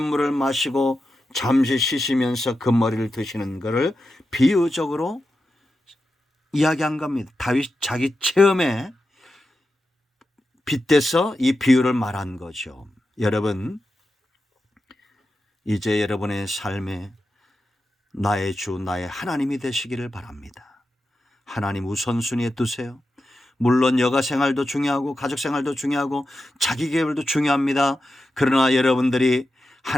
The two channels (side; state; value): both; normal; correlation 0.90